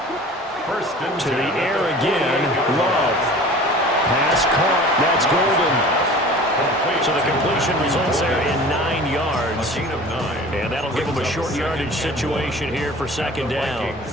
First and to the air again. Love. Pass caught. That's Golden. So the completion results there in 9 yards. And that'll give them a short yardage situation here for 2nd down.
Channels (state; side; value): normal; both; correlation 0.42